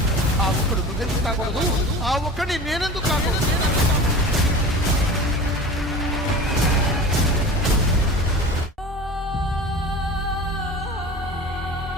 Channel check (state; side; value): normal; both; correlation 0.36